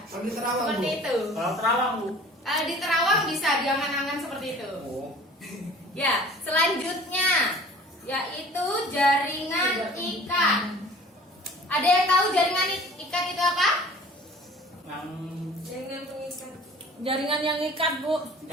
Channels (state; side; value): normal; both; correlation 0.47